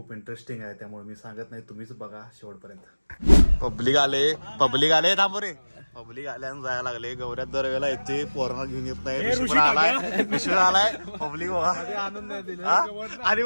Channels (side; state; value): both; inverted; correlation -1.00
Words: इंटरेस्टिंग आहे, त्यामुळे मी सांगत नाही, तुम्हीच बघा शेवटपर्यंत. पब्लिक आले थांबो रे. पब्लिक आल्यानं जायला लागले. गौऱ्यात दरवेळेला येते, पोरांना घेऊन येत नाही. ऋषी आलाय पब्लिक बघा आणि